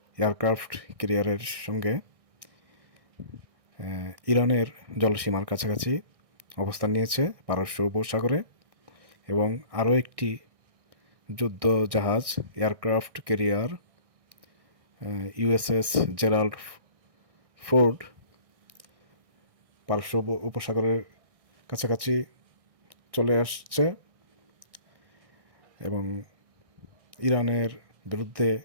এয়ারক্রাফট ক্যারিয়ারের সঙ্গে ইরানের জলসীমার কাছাকাছি অবস্থান নিয়েছে পারস্য উপসাগরে, এবং আরও একটি যুদ্ধ জাহাজ aircraft carrier USS Gerald Ford পারস্য উপসাগরের কাছাকাছি চলে আসছে এবং ইরানের বিরুদ্ধে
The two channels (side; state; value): left; late; 1.6 ms